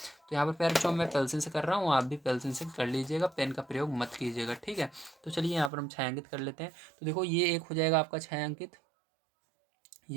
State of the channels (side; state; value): left; drops out; at 5.7 s